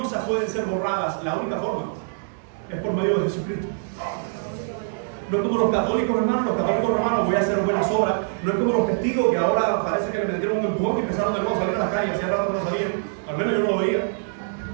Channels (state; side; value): silent; left; digital silence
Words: pueden ser borradas? La única forma es por medio de Jesucristo. No es como los católicos, hermanos. Los católicos romanos: voy a hacer buenas obras. No es como los testigos que ahora parece que le metieron un empujón y empezaron de nuevo a salir a la calle. Hacía rato que no salían. Al menos yo no lo veía.